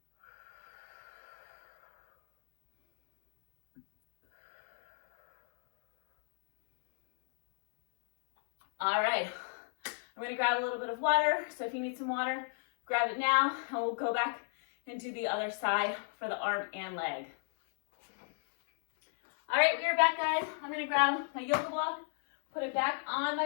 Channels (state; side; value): silent; right; 53 dB below the other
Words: All right, I'm gonna grab a little bit of water. So if you need some water, grab it now, and we'll go back and do the other side for the arm and leg. All right, we are back, guys. I'm gonna grab my yoga block, put it back on my